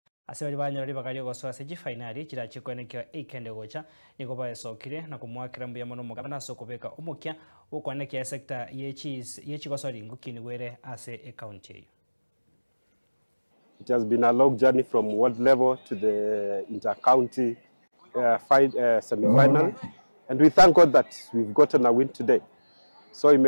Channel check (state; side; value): inverted; both; correlation -1.00